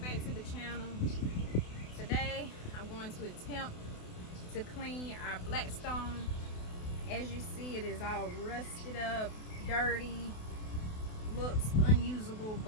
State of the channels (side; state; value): right; late; 28 ms